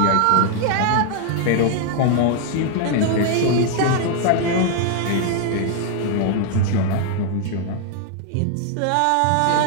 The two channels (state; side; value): different; both; correlation 0.00